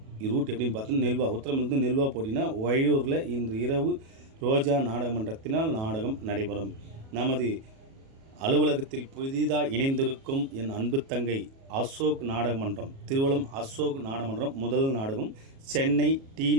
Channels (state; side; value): late; left; 37 ms